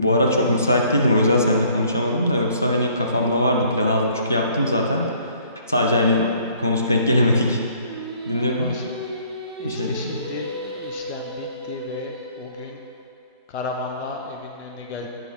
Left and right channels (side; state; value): both; inverted; correlation -0.59